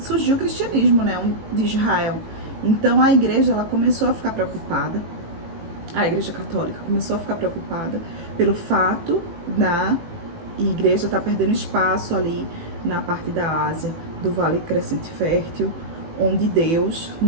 o cristianismo, né, de Israel. Então a igreja, ela começou a ficar preocupada, a Igreja Católica começou a ficar preocupada pelo fato da igreja estar perdendo espaço ali na parte da Ásia, do Vale Crescente Fértil, onde Deus,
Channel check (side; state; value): left; late; 18 ms